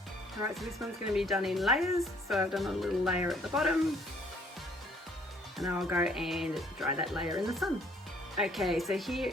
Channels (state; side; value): normal; both; correlation 0.62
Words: All right, so this one's going to be done in layers. So I've done a little layer at the bottom, and I'll go and dry that layer in the sun. Okay, so here